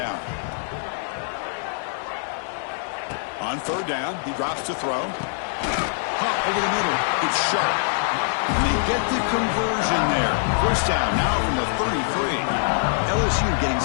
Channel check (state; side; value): silent; right; 63 dB below the other